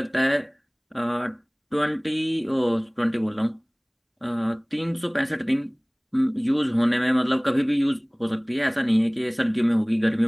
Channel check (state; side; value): identical; both; correlation 1.00